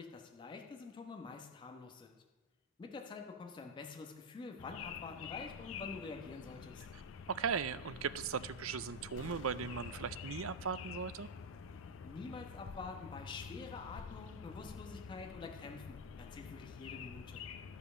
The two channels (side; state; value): both; normal; correlation 0.03